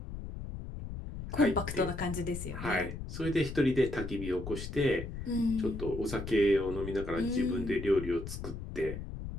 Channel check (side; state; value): left; noise; rumble, 8 dB below the sound